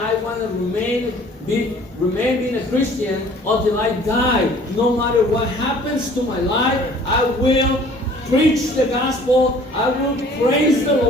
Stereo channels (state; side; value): normal; both; correlation 0.52